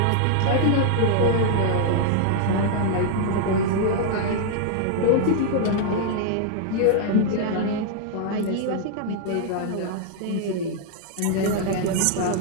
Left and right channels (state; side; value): different; both; correlation 0.00